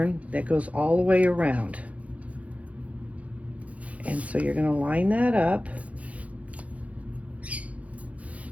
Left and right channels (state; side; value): late; left; 0.067 ms